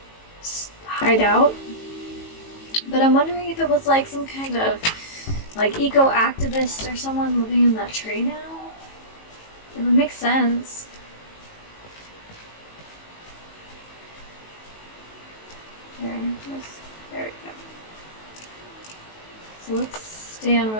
hide out. But I'm wondering if it was like some kind of like eco-activist or someone living in that tree now. It would make sense. There we go. So let's stand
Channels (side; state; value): right; late; 18 ms